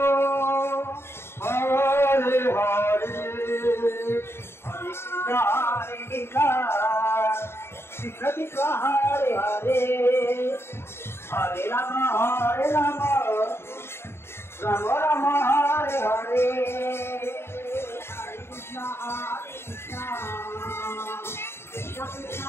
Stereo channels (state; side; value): late; right; 0.12 ms